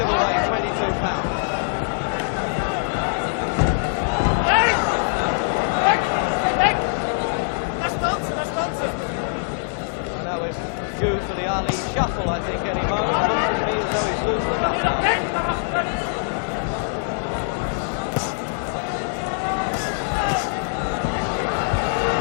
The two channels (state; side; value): silent; right; 57 dB below the other